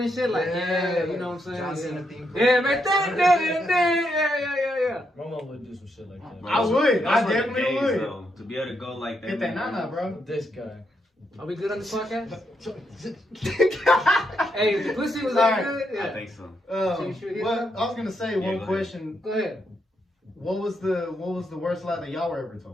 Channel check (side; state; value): both; normal; correlation 0.79